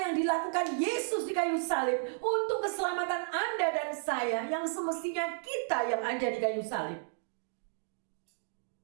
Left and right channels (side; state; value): left; silent; digital silence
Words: dilakukan Yesus di kayu salib untuk keselamatan Anda dan saya, yang semestinya kita yang ada di kayu salib.